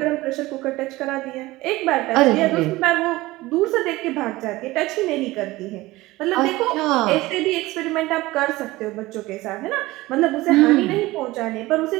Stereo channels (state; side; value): quieter; left; 19.1 dB